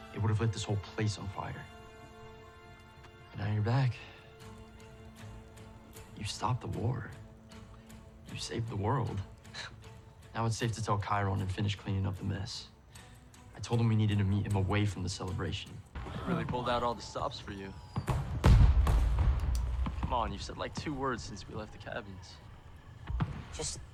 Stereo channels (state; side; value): identical; both; correlation 1.00